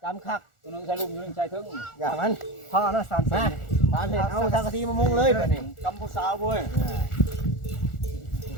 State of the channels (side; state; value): right; late; 1.4 ms